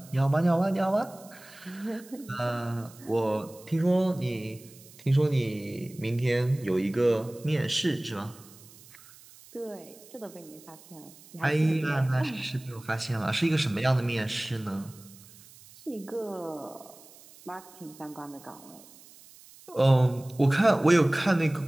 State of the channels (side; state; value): right; noise; hiss, 22 dB below the sound